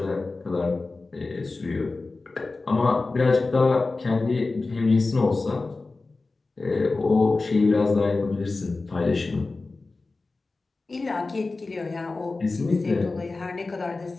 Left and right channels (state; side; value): quieter; right; 3.6 dB